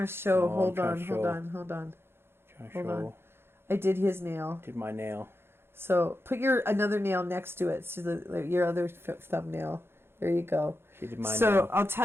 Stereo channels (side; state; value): left; late; 0.11 ms